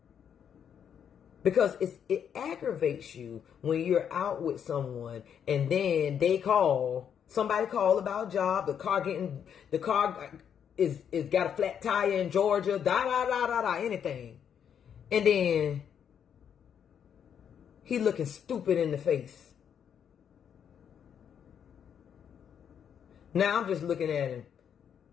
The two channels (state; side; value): quieter; right; 8.3 dB